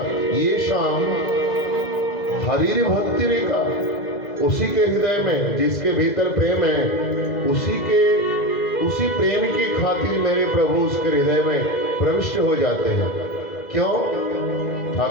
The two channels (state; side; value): late; right; 2.0 ms